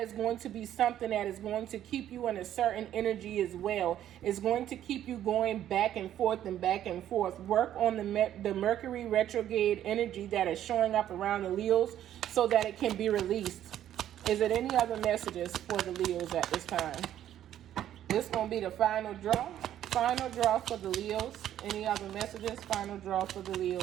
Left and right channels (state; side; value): quieter; left; 11.5 dB